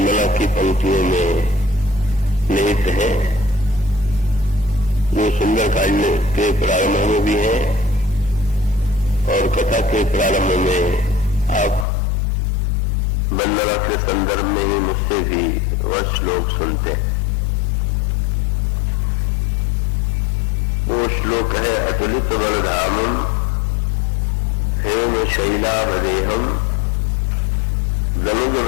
की पंक्तियों में निहित है, जो सुंदरकांड के प्रारंभ में भी है और कथा के प्रारंभ में आप वंदना के संदर्भ में भी मुझसे भी वह श्लोक सुनते हैं। वो श्लोक है, अतुलित बलधामम हेम शैलावदेहम गनुज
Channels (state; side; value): drops out; right; at 11.9 s